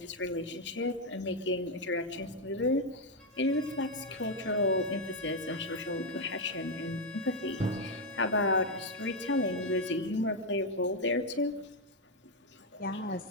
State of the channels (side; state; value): both; normal; correlation 0.03